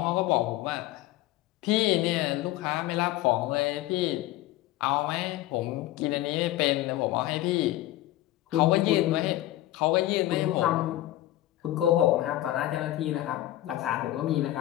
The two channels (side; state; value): right; quieter; 15.3 dB